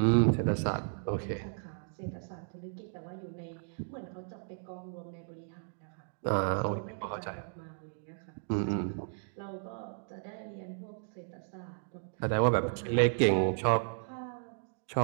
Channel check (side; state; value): left; silent; digital silence